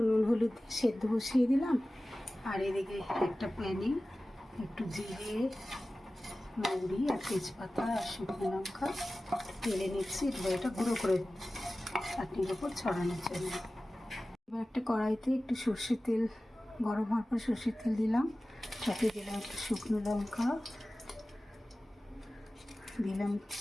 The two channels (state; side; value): normal; both; correlation 0.96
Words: নুন হলুদ দিয়ে সেদ্ধ বসিয়ে দিলাম, আর এদিকে একটা প্যানে একটু জিরে, মৌরি আর তেজপাতা আর শুকনো লঙ্কা তেলে নিচ্ছি। এবার এটা গুঁড়ো করে চাটনির ওপর ছড়ানোর জন্য। এবার একটা কড়াইতে একটু সর্ষের তেল গরম হওয়ার পর সর্ষের তেল দিলাম, সাথে দিলাম একটু শুকনো লঙ্কা, দিলাম